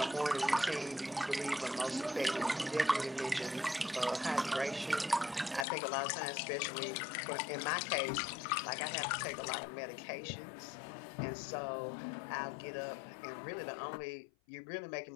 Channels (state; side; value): drops out; right; at 5.7 s